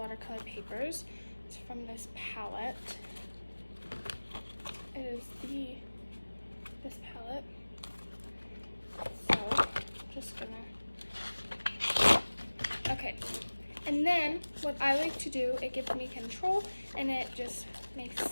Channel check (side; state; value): both; inverted; correlation -1.00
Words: papers. It's from this palette. It is this palette. So, just gonna, okay. And then, what I like to do, it gives me control, and it just makes it